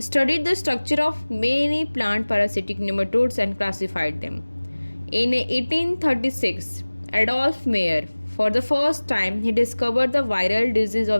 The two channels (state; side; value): inverted; both; correlation -1.00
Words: the structure of many plant parasitic nematodes and classified them. In 1836, Adolf Meyer, for the first time, he discovered the viral disease